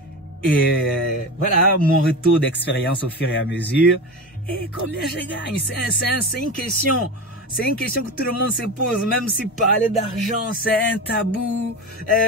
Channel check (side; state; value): both; normal; correlation 0.25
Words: Et voilà mon retour d'expérience au fur et à mesure. Et combien je gagne? C'est une question. C'est une question que tout le monde se pose. Même si parler d'argent, c'est un tabou.